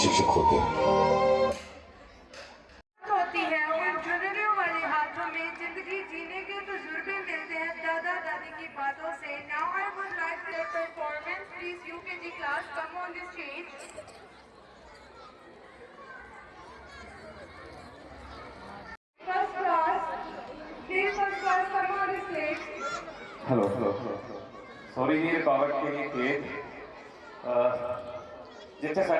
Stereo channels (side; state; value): both; identical; correlation 1.00